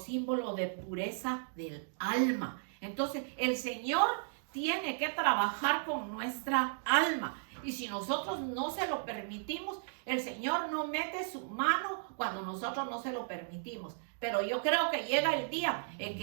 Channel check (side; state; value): left; silent; digital silence